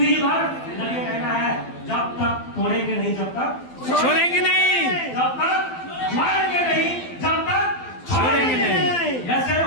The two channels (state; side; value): late; right; 12 ms